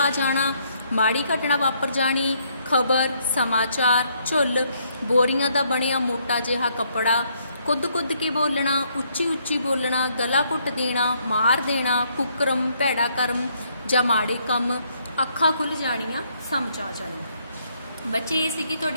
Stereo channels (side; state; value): both; inverted; correlation -0.71